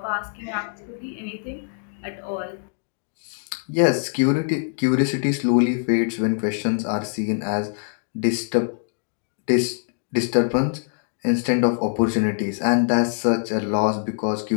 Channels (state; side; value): silent; right; digital silence